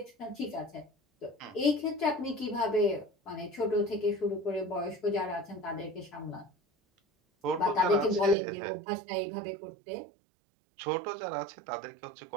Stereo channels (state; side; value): drops out; left; at 8.3 s